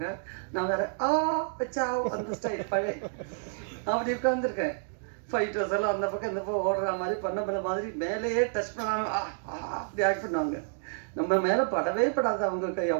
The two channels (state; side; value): silent; left; digital silence